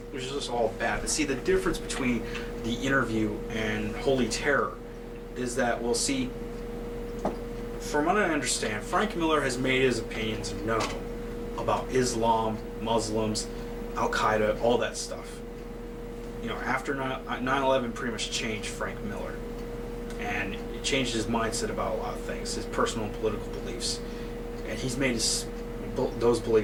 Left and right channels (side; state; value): both; identical; correlation 1.00